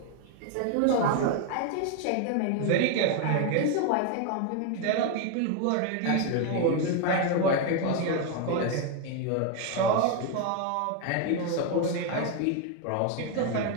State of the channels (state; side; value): different; both; correlation 0.01